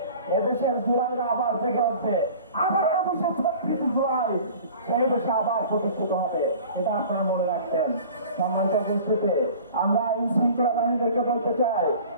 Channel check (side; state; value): both; inverted; correlation -0.43